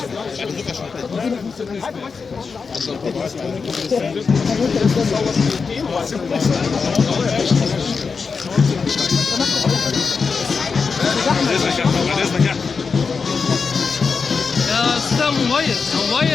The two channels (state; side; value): quieter; right; 5.1 dB